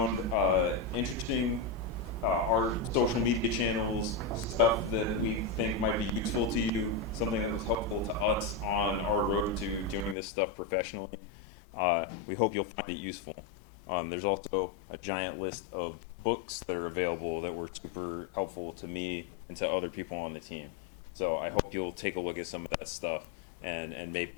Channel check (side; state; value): right; drops out; at 10.2 s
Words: interesting. Our social media channels, stuff that we think might be useful to you, something that was helpful to us on our road to doing this stuff professionally. We hope you'll find it useful. There's also a giant list of books that are available that were super helpful to me and to other people on the team. So I hope you'll take a look at some of that stuff and